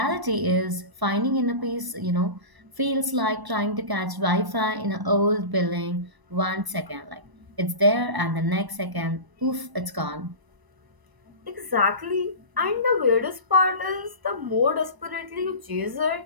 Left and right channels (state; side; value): late; left; 1.0 ms